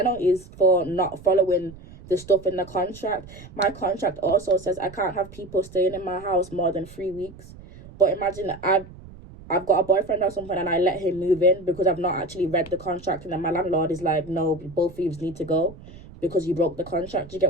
for not following the stuff in the contract. My contract also says I can't have people staying in my house more than 3 weeks. But imagine I've got a boyfriend or something and I let him move in because I've not actually read the contract, and then my landlord is like, no, both of you need to go because you broke the contract. You get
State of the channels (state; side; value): noise; right; rumble, 18 dB below the sound